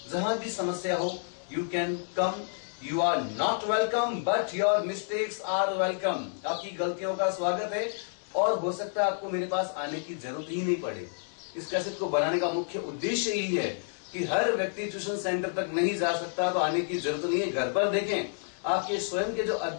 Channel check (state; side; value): silent; right; digital silence